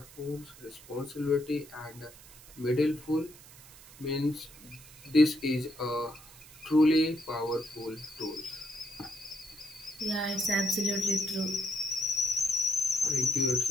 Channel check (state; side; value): noise; right; hiss, 20 dB below the sound